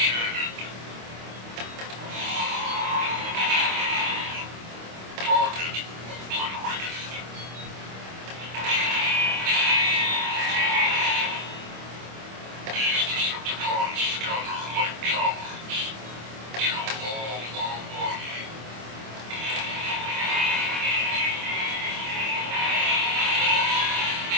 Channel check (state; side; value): late; left; 26 ms